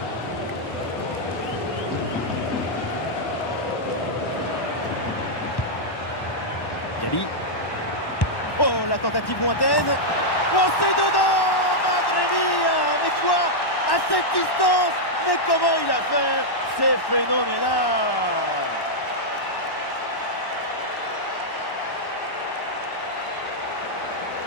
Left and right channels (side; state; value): right; late; 1.1 ms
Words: Gabi. Oh, la tentative lointaine. Oh, c'est dedans, Madre mia. Mais quoi? À cette distance? Mais comment il a fait? C'est phénoménal.